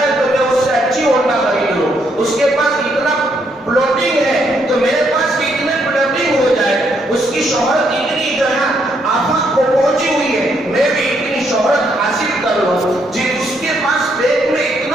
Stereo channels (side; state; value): both; normal; correlation 0.74